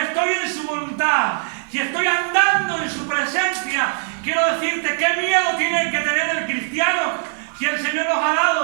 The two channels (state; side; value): silent; left; 61 dB below the other